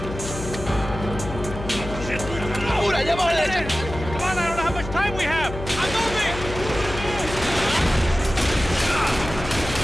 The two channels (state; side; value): noise; left; hum, 10 dB below the sound